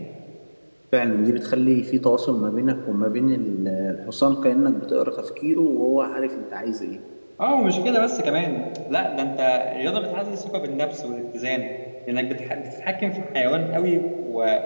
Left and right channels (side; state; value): both; inverted; correlation -1.00